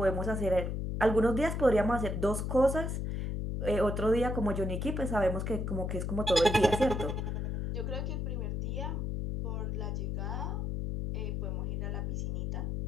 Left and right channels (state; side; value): noise; left; hum, 2 dB below the sound